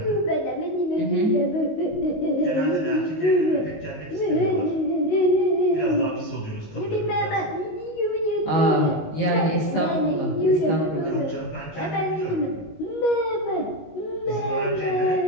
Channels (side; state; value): right; late; 19 ms